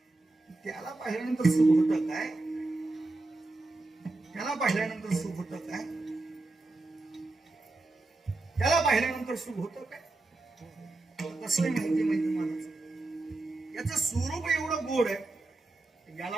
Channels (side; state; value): left; quieter; 3.0 dB